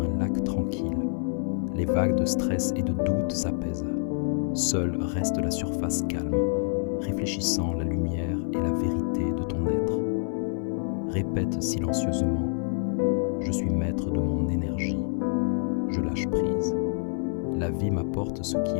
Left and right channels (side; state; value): right; silent; digital silence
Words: un lac tranquille. Les vagues de stress et de doute s'apaisent. Seule reste la surface calme, réfléchissant la lumière et la vérité de ton être. Répète silencieusement « Je suis maître de mon énergie. Je lâche prise. La vie m'apporte ce